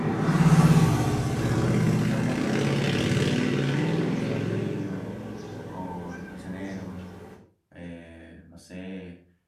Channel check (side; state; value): both; identical; correlation 1.00